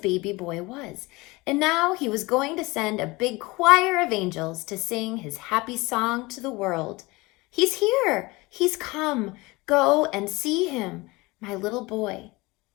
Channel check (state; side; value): quieter; right; 23.0 dB